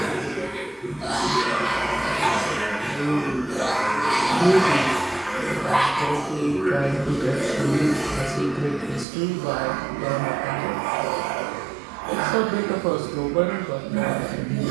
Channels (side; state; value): left; drops out; at 9.1 s